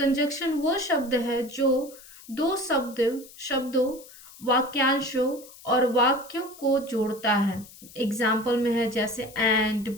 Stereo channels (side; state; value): left; noise; hiss, 20 dB below the sound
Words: वो शब्द है जो दो शब्दों, वाक्यांशों और वाक्यों को जोड़ता है। एग्जाम्पल में है जैसे एंड,